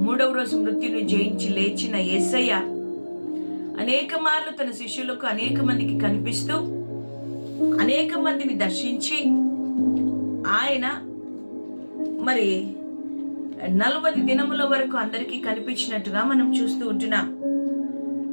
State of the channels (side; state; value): both; inverted; correlation -1.00